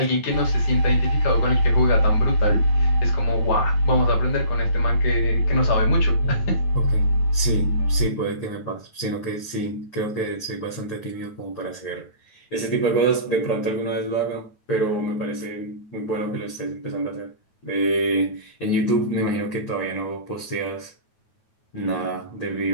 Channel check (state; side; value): late; right; 9.3 ms